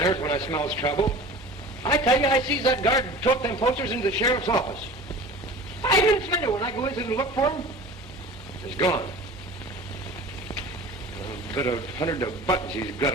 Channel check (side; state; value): both; normal; correlation 0.39